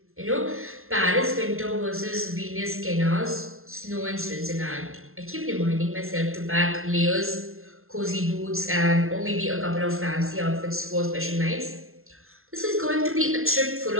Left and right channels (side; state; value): left; late; 0.62 ms